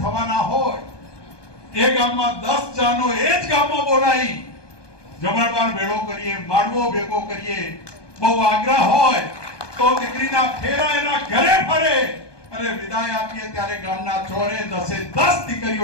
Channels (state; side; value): late; right; 1.2 ms